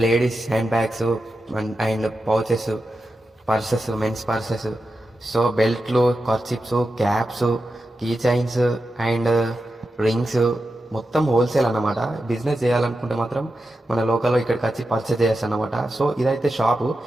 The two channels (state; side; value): normal; both; correlation 0.90